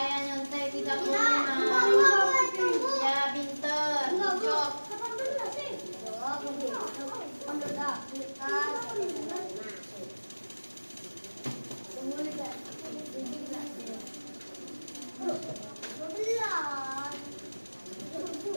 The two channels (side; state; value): both; inverted; correlation -1.00